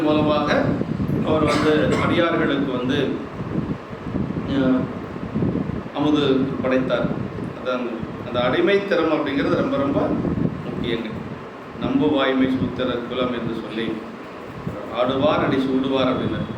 மூலமாக அவர் வந்து அடியார்களுக்கு வந்து அமுது படைத்தார். அதான் அந்த அடிமைத்திறம் அப்படிங்கிறது ரொம்ப ரொம்ப முக்கியங்க. நம்பு வாய்மை சூத்திர குலம் என்று சொல்லி ஆடுவார் அடி சூடுவார் அப்படின்னு.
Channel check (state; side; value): identical; both; correlation 1.00